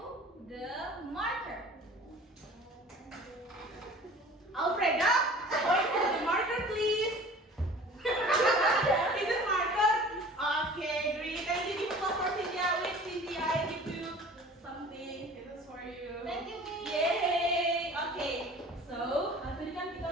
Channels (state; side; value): normal; both; correlation 0.44